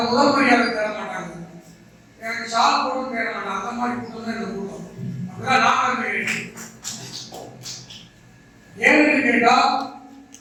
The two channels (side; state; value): both; identical; correlation 1.00